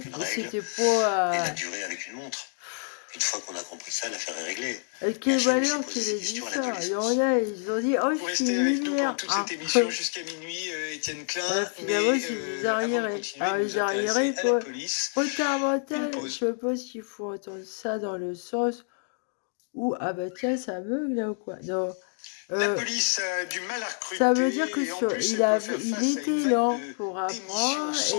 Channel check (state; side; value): silent; right; 60 dB below the other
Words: C'était pas... Et la durée avec une montre. Une fois qu'on a compris ça, l'affaire est réglée. Quel valeur qu'il ait dit ça? Il y en a, ils ont dit, oh, je suis lumière. Toute cette émission jusqu'à minuit, Étienne Klein. Finalement, c'est des arriérés. Les arriérés, quoi. Retard mental, je sais pas s'il faut entendre ça dans le sens où, ah bah tiens, ça bug là ou quoi? Non. La police a du mal à recruter. Ça veut dire que il était lent pour apprendre.